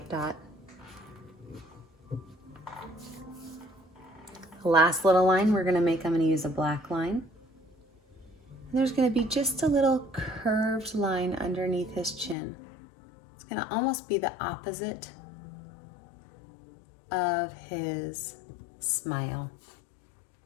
dot. The last little line we're going to make, I'm going to use a black line. And there's going to be just a little curved line underneath his chin. It's going to almost be the opposite of his smile.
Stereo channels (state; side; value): drops out; right; at 12.4 s